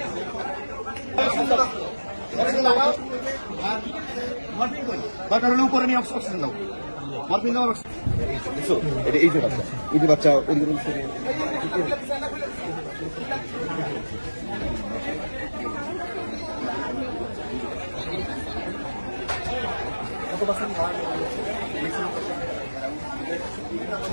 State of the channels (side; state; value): both; inverted; correlation -1.00